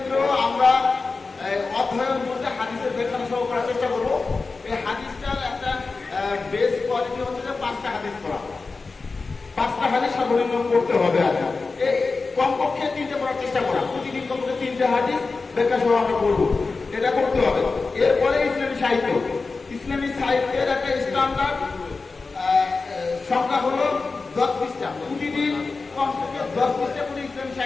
আমরা অধ্যয়ন বলতে হাদিসের ব্যাখ্যা সহ করার চেষ্টা করবো। এই হাদিসটার একটা বেস কোয়ালিটি হচ্ছে যে 5টা হাদিস পড়া, 5টা হাদিস সর্বনিম্ন পড়তে হবে। আর কমপক্ষে 3টে পড়ার চেষ্টা করা, প্রতিদিন কমপক্ষে 3টে হাদিস ব্যাখ্যা সহ আমরা পড়বো, এটা করতে হবে। এরপরে ইসলামী সাহিত্য, ইসলামী সাহিত্যের একটা স্ট্যান্ডার্ড সংখ্যা হলো 10 পৃষ্ঠা, প্রতিদিন কমপক্ষে 10 পৃষ্ঠা করে ইসলামী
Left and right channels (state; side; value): quieter; right; 4.1 dB